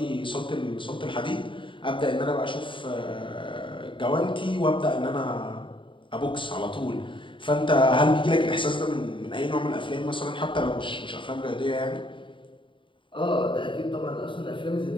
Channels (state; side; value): late; right; 0.24 ms